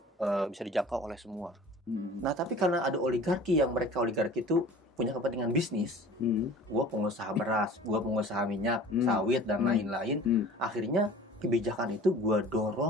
bisa dijangkau oleh semua. Nah tapi karena ada oligarki itu punya kepentingan bisnis, gua pengusaha beras, gua pengusaha minyak, sawit dan lain-lain. Akhirnya kebijakan itu gua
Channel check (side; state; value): both; normal; correlation 0.44